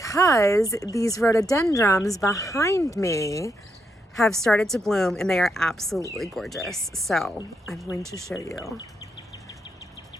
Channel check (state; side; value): normal; both; correlation 0.80